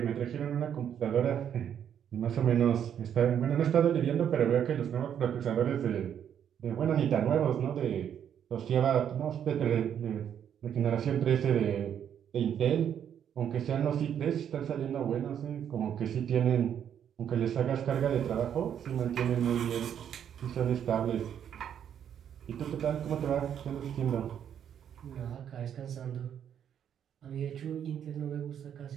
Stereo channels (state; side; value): quieter; left; 9.1 dB